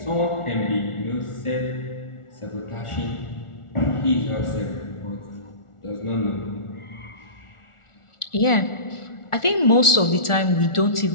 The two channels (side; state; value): right; late; 1.4 ms